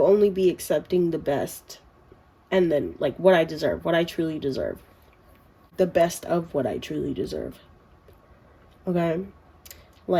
best, and then like what I deserve, what I truly deserve. The best of what I truly deserve. Okay?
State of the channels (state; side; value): identical; both; correlation 1.00